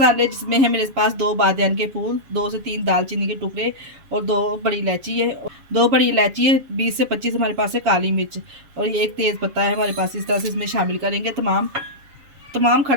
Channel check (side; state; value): left; late; 7.2 ms